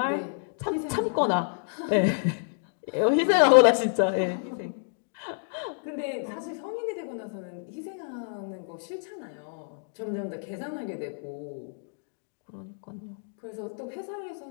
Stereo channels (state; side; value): silent; right; digital silence